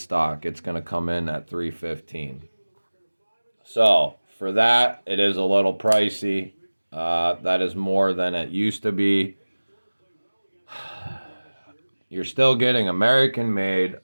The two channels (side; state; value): both; inverted; correlation -1.00